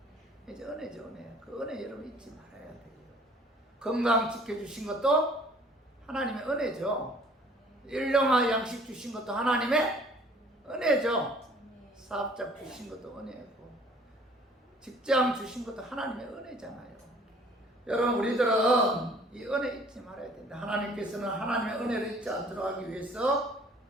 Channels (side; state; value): both; normal; correlation 0.54